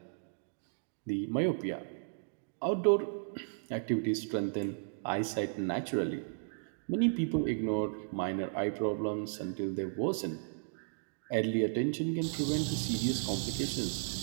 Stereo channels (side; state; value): left; silent; digital silence